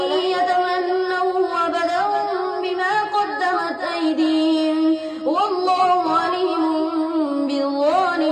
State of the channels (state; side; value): identical; both; correlation 1.00